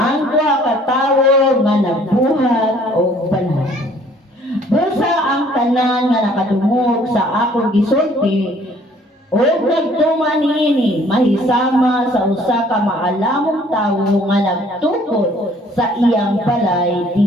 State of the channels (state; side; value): normal; both; correlation 0.58